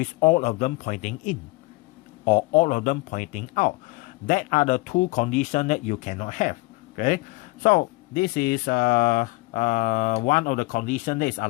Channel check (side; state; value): right; quieter; 24.0 dB